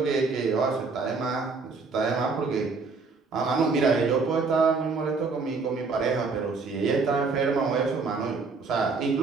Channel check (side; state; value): left; quieter; 4.4 dB